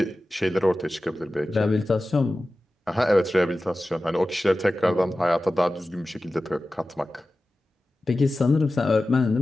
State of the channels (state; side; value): normal; both; correlation 0.95